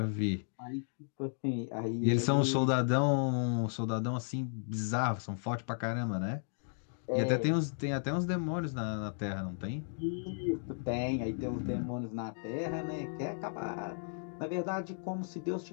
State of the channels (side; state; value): right; silent; digital silence